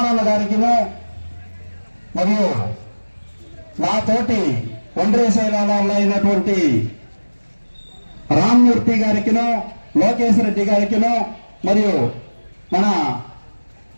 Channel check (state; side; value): inverted; both; correlation -1.00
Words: గారికిను మరియు నాతోటి ఒండ్రేసేలాలో అయినటువంటి రామ్మూర్తి గారికిను, లోకేష్ రెడ్డి గారికిను, మరియు మన